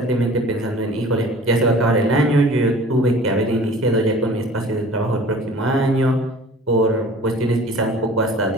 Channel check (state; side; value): normal; both; correlation 0.45